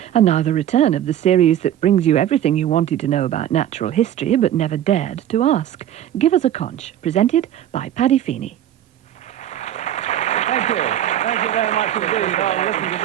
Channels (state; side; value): quieter; left; 11.3 dB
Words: And now the return of the series that brings you everything you wanted to know about natural history but never dared to ask. Give Us A Conch, presented by Paddy Feeny. Thank you. Thank you very much indeed. Oh, listen to